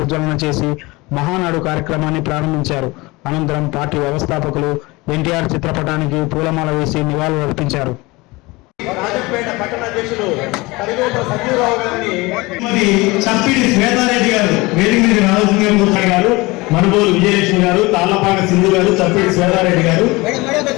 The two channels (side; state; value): right; quieter; 23.0 dB